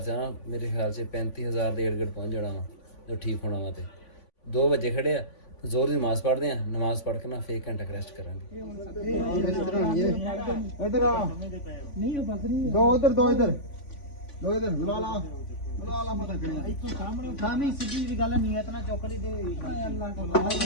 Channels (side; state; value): right; late; 3.5 ms